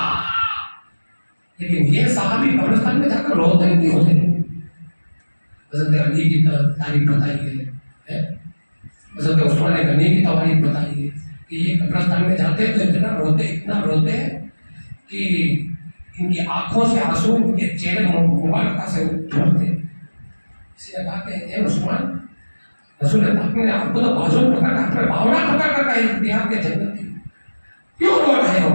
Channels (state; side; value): inverted; both; correlation -1.00